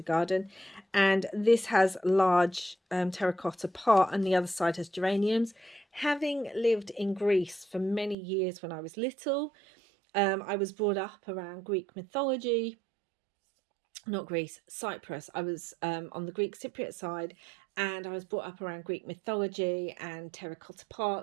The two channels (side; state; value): left; drops out; at 8.2 s